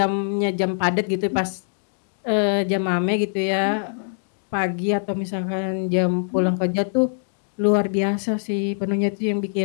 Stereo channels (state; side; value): silent; right; digital silence